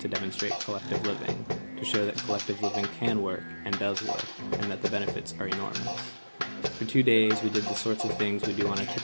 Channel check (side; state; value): both; inverted; correlation -1.00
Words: demonstrate collective living, to show that collective living can work and does work, and that the benefits are enormous. For 2 days, we did the sorts of things we do on a